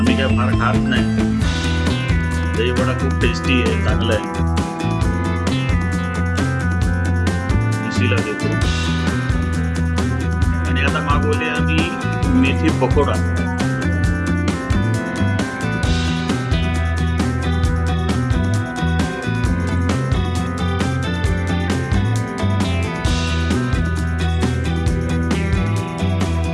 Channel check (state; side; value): identical; both; correlation 1.00